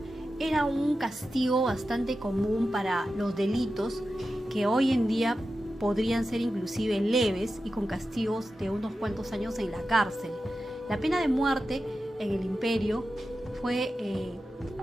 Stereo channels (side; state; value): both; normal; correlation 0.92